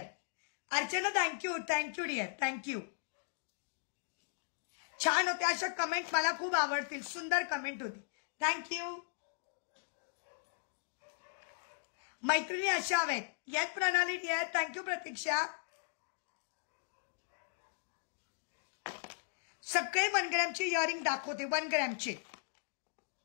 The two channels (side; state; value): right; silent; digital silence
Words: Archana thank you dear, thank you. छान होते अशा कमेंट, मला खूप आवडतील. सुंदर कमेंट होती. थँक्यू. मैत्रिणी अशा हवेत. येस प्रणाली डियर, थँक्यू प्रतीक्षा. सगळे 1 ग्रॅमचे इयरिंग दाखवते. 1 ग्रॅमचे